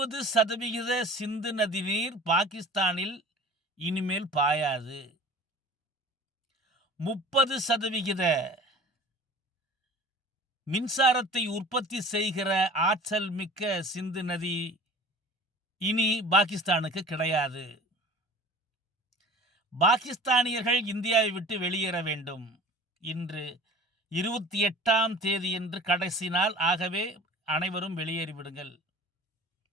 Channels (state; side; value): normal; both; correlation 0.44